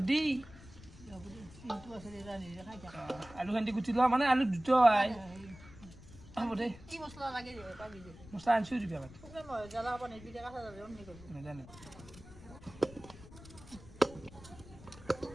আলু খান্দি গুটি লোৱা মানে আলু দুটো আই হ'ব দে কি মছলা লাগে পাবি দে মছলা আনছো দিবি আগত মই জ্বালা পানি বিটা কাটা যাবে অন্য করব না জানি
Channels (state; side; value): noise; left; rumble, 18 dB below the sound